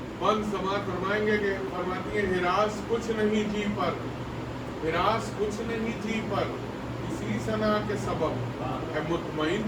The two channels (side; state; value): both; identical; correlation 1.00